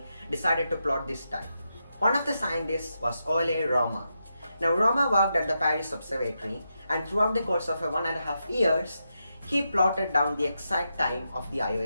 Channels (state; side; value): inverted; both; correlation -0.85